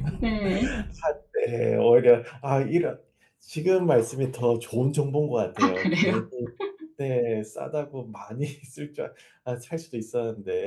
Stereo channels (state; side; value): identical; both; correlation 1.00